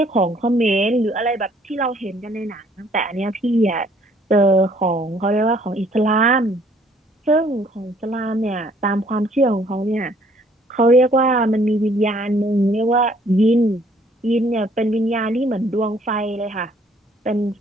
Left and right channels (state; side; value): normal; both; correlation 0.61